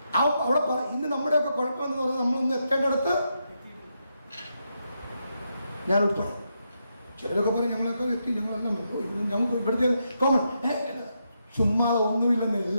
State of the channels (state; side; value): inverted; both; correlation -0.82